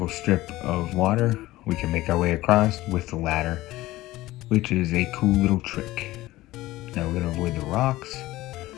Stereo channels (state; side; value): quieter; right; 17.4 dB